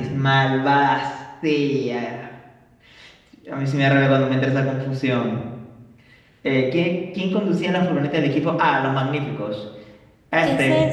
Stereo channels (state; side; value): identical; both; correlation 1.00